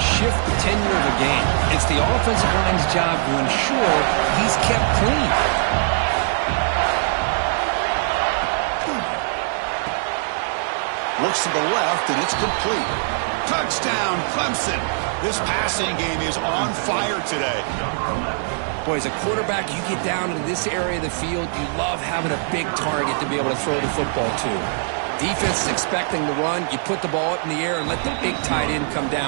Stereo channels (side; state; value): left; silent; digital silence